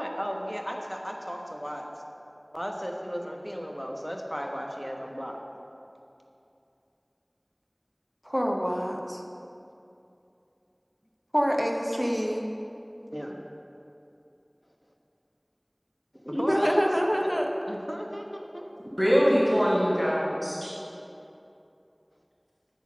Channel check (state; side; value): identical; both; correlation 1.00